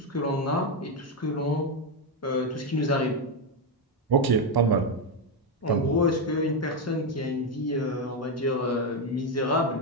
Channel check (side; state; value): both; normal; correlation 0.06